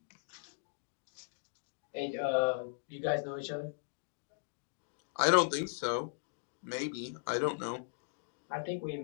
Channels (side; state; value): right; silent; digital silence